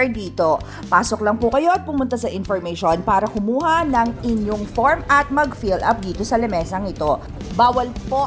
dito. Pasok lang po kayo at pumunta sa information para kumuha ng inyong form at mag-fill up dito sa lamesang ito. Bawal po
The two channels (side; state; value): both; identical; correlation 1.00